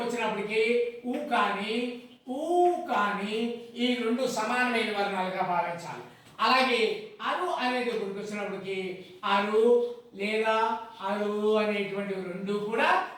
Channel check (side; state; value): both; identical; correlation 1.00